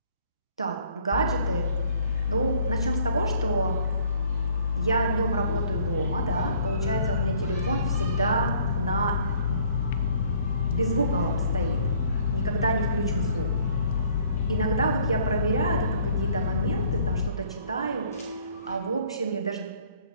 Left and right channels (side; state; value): both; inverted; correlation -0.60